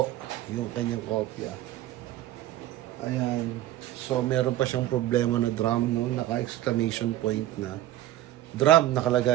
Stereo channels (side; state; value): left; quieter; 13.9 dB